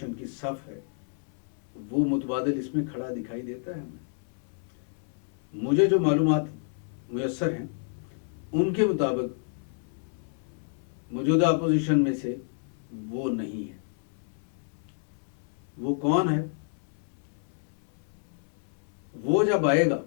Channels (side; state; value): right; silent; 58 dB below the other